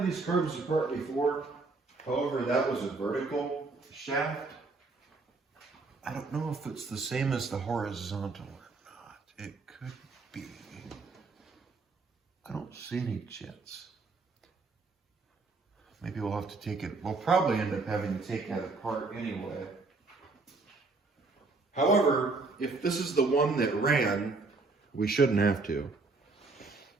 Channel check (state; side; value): quieter; left; 3.8 dB